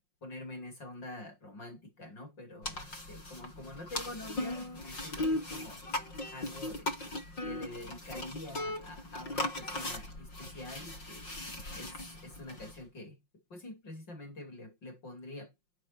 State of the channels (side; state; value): right; late; 5.6 ms